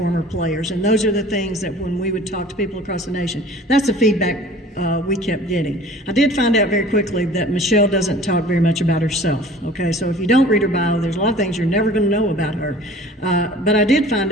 players, and those are the things that when we would talk to people across the nation, that's the feedback we kept getting. I did find out very quickly that Michelle doesn't talk very much about herself, okay? So if you don't read her bio, there's a lot of things you're never going to know about her. But I did find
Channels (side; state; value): both; normal; correlation 0.46